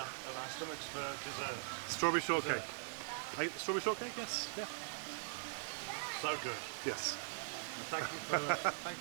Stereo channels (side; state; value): left; silent; digital silence